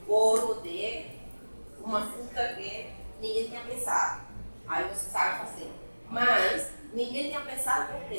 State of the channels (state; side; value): inverted; both; correlation -1.00